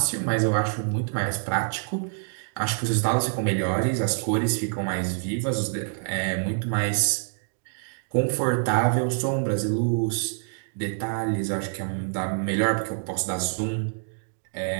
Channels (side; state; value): left; silent; 61 dB below the other